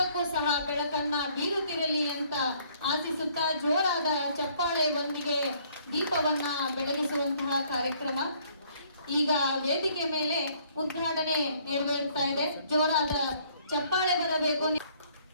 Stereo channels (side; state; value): both; inverted; correlation -0.62